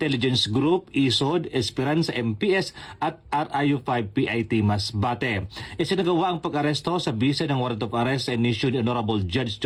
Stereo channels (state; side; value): identical; both; correlation 1.00